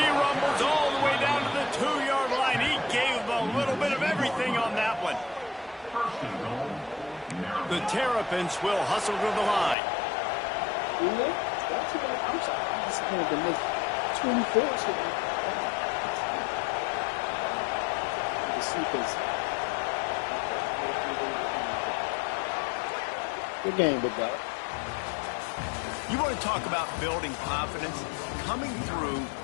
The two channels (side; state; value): right; drops out; at 9.8 s